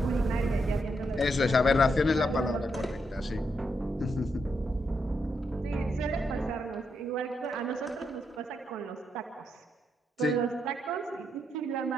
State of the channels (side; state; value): both; normal; correlation 0.81